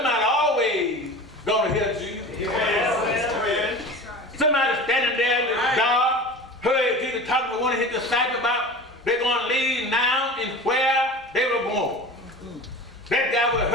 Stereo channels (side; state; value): both; normal; correlation 0.35